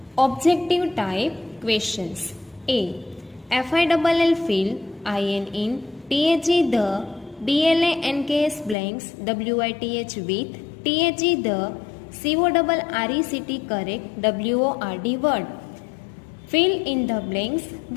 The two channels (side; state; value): right; drops out; at 8.8 s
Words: objective type questions. A. FILL fill IN in THE the BLANKS blanks WITH with THE the CORRECT correct WORD word. Fill in the blanks